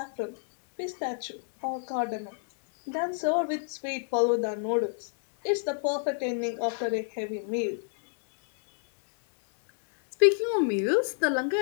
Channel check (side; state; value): right; silent; digital silence